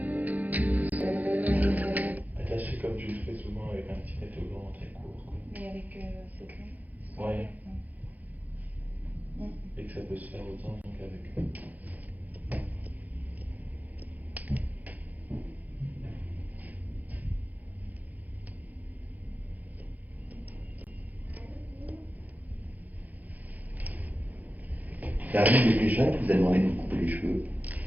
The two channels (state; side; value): late; left; 0.081 ms